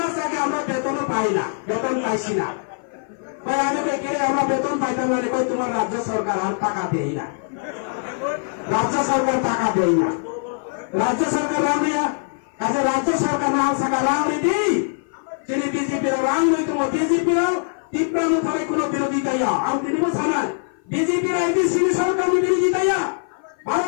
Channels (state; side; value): silent; right; 56 dB below the other